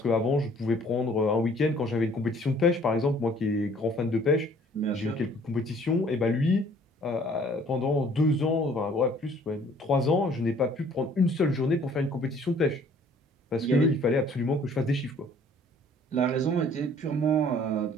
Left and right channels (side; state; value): both; normal; correlation 0.56